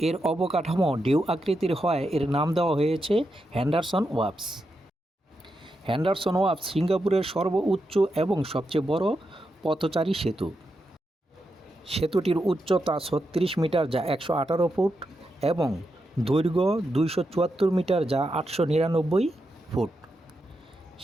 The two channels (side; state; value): both; normal; correlation 0.86